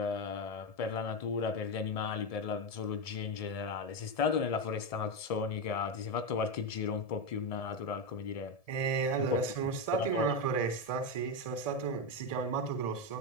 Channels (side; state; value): right; late; 1.7 ms